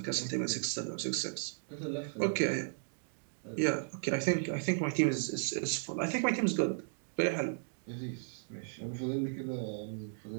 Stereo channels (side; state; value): left; silent; digital silence